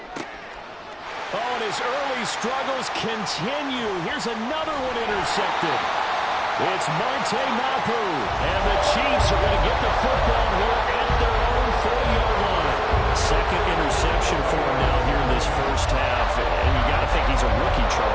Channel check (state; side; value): identical; both; correlation 1.00